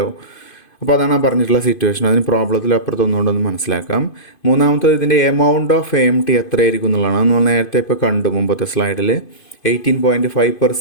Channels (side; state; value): right; late; 2.5 ms